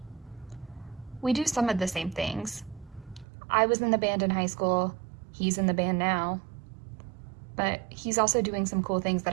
We do some of the same things. I was in the band in high school, he's in the band now, but he's also doing some cool things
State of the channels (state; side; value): drops out; left; at 3.2 s